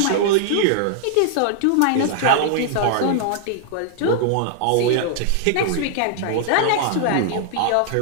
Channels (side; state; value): both; different; correlation -0.01